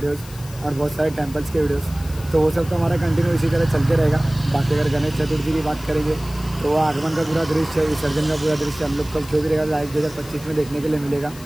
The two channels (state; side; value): noise; left; hiss, 18 dB below the sound